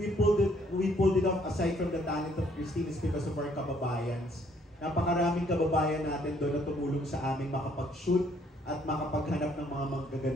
pulled it off aside from the talent of Christine is because of our kababayans. Napakaraming kababayan natin doon na tumulong sa aming makapag-shoot at makapaghanap ng mga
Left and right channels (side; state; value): both; normal; correlation 0.65